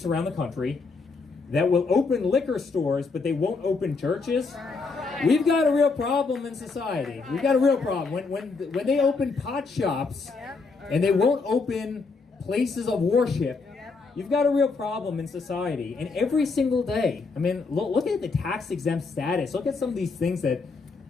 around the country that will open liquor stores, but they won't open churches, we've got a real problem in society. We've got a real problem. When they open pot shops and they won't open places of worship, you've got a real problem in society. And every single day, I mean, look at the tax exempt status. Look at some of these things that,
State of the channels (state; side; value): quieter; right; 4.3 dB